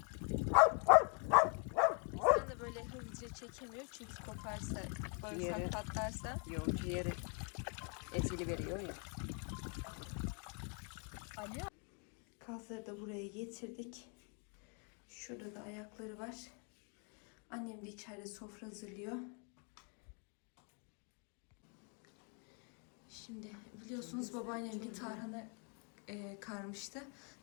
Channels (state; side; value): quieter; right; 38.7 dB